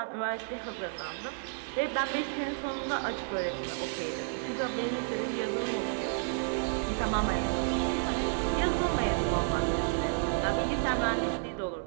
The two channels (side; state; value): left; silent; digital silence